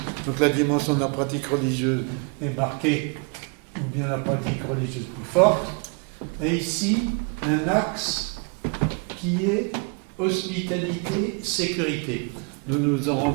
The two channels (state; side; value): quieter; left; 34.6 dB